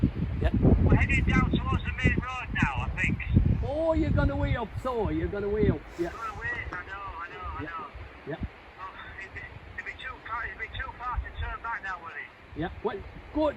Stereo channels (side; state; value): both; identical; correlation 1.00